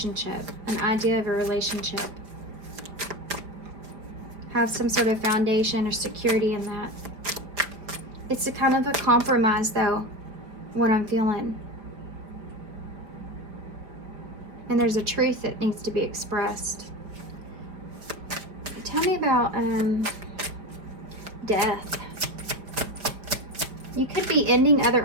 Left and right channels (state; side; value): late; left; 4.8 ms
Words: an idea of a relationship. Have some sort of foundation or security in that. It's a kind of a compromise, though, what I'm feeling. And there's a truth that needs to be expressed. Tell me about death. You could be ending